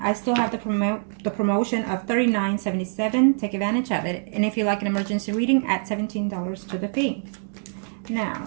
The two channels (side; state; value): left; silent; 62 dB below the other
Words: still have the promotion of $39.77. Take advantage of it. And if you like an emergency reading, add $17 to the fee.